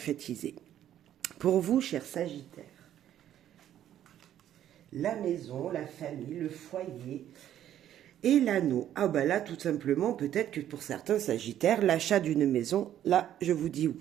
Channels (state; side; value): quieter; left; 11.3 dB